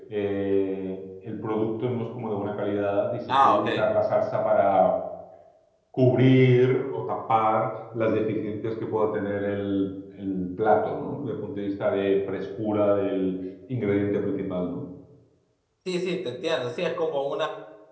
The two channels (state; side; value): identical; both; correlation 1.00